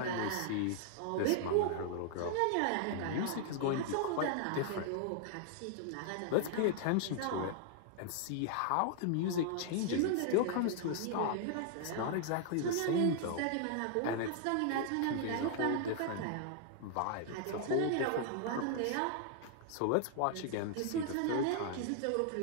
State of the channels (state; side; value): different; both; correlation -0.01